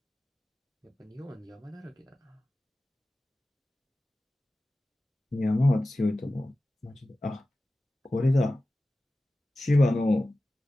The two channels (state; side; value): normal; both; correlation 0.95